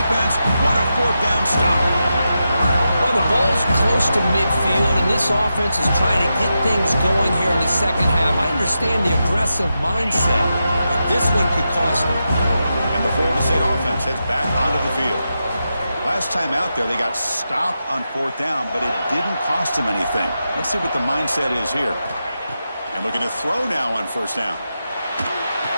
What a fourth down stop. Well, the ball's close to midfield, and this offense is trying to get things going here in the second half. I understand the aggressive mindset, but this one could cost them. And the Florida State offense heads back onto the field. Last time out there, they got stopped on fourth down, but it didn't cost them anything. Let's see what the mindset is here. And looking to throw now on first down.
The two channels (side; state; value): both; inverted; correlation -0.88